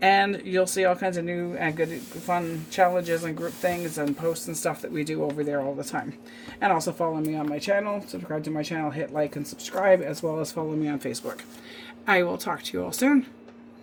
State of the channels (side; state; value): both; identical; correlation 1.00